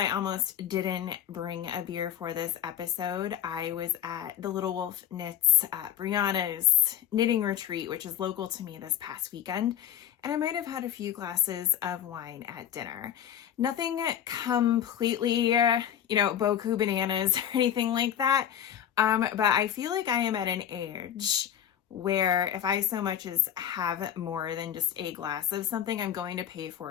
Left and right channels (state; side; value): quieter; right; 10.1 dB